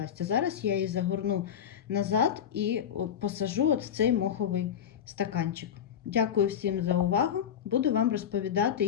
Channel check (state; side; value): quieter; right; 8.8 dB